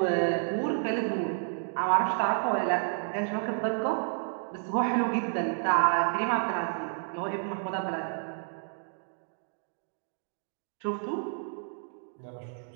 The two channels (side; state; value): left; silent; 57 dB below the other